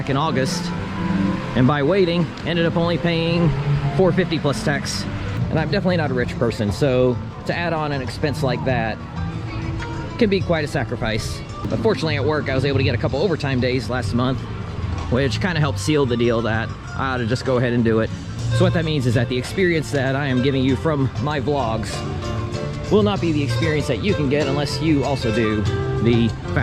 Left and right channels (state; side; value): identical; both; correlation 1.00